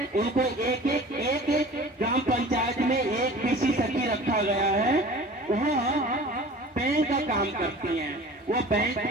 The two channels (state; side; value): normal; both; correlation 0.42